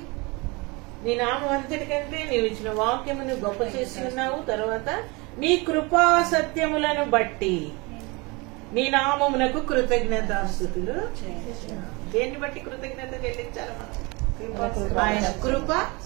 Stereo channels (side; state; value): left; quieter; 26.8 dB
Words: నీ నామం అంతటికంటే నీవు ఇచ్చిన వాక్యమును గొప్ప చేసి ఉన్నావు. తర్వాత నీ కృపా సత్యములను బట్టి నీ నామమునకు కృతజ్ఞతాస్తుతులు. దేన్ని బట్టి కృతజ్ఞత చెల్లించాలి మనం? ఆయన కృప,